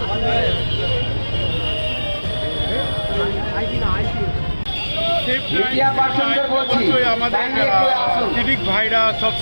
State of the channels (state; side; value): inverted; both; correlation -1.00